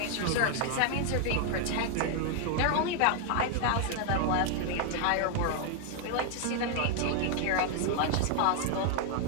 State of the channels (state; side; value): different; both; correlation 0.00